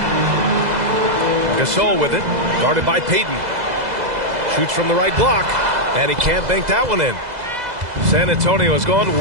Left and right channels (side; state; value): left; late; 2.0 ms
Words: Gasol with it. Guarded by Payton. Shoots from the right block. And he can't bank that one in. San Antonio has gone